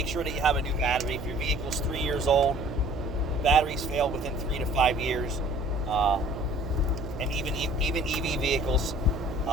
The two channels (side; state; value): right; noise; hum, 10 dB below the sound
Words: sure that you have a new battery. If your vehicle's 3 years old, batteries fail within 3 to 5 years. And even EV vehicles